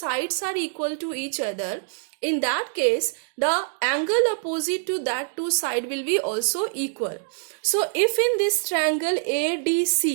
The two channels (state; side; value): silent; left; 62 dB below the other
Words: are equal to each other, in that case the angle opposite to that two side will be also equal. So if in this triangle